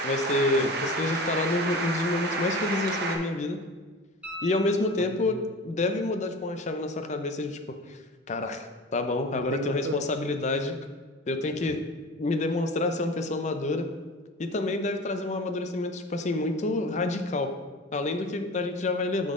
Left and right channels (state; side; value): normal; both; correlation 0.35